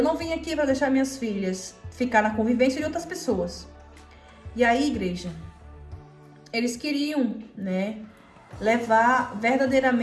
não vim aqui para deixar minhas filhas ficar na convivência de outras pessoas. E aí, igreja, eles queriam, né, levar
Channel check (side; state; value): both; identical; correlation 1.00